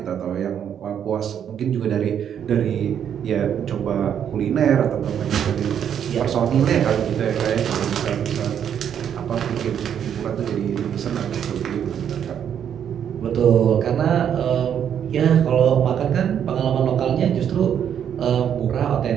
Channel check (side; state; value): left; quieter; 8.9 dB